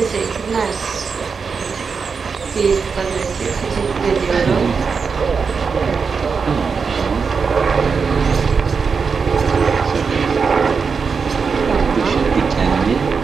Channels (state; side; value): quieter; left; 5.4 dB